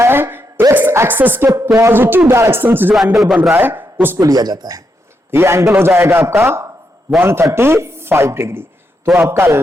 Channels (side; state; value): both; normal; correlation 0.82